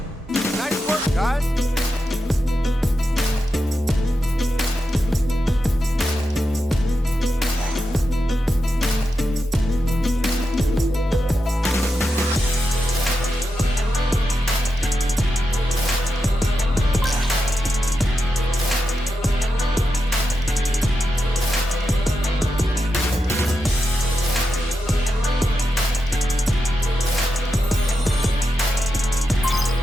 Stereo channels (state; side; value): normal; both; correlation 0.88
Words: Nice work, guys.